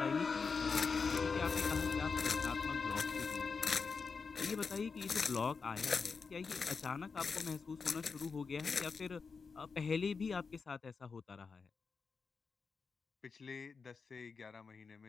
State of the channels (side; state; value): right; quieter; 5.1 dB